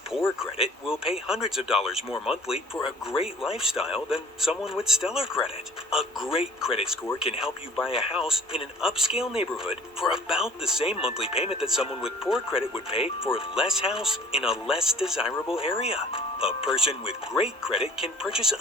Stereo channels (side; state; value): both; normal; correlation 0.51